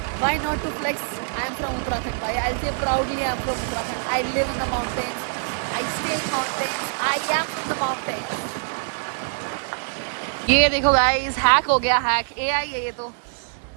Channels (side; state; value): left; silent; 63 dB below the other